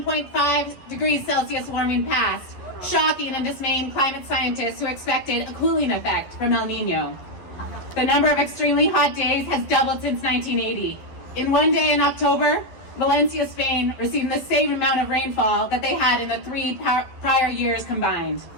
degrees Celsius warming past, shocking and dismaying climate scientists who expected a cooling effect from El Nino. The number of extremely hot days has doubled since 1980. In one day in October, Valencia, Spain received the same amount of rainfall that they had in the three prior years combined.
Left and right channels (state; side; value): late; right; 11 ms